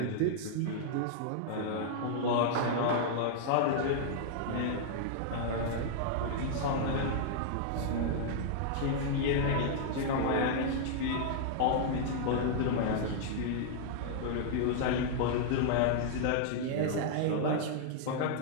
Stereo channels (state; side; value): different; both; correlation -0.01